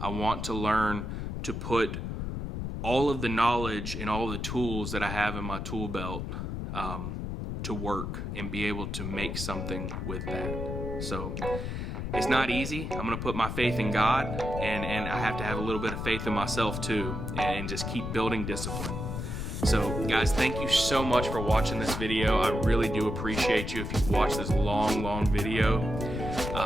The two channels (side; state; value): left; noise; rumble, 4 dB below the sound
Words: I want to learn to put all of the knowledge and all the tools that I have in my tool belt to work and be able to make something with that. So it's not easy. I'm going to put my faith in God, and I have to have a little bit of faith in myself too, and just keep building discipline. So guys, thank you so much for watching this video. I really do appreciate you if you've watched this long video.